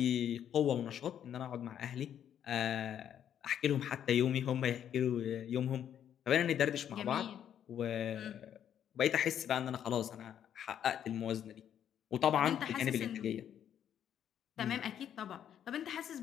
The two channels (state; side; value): quieter; right; 9.6 dB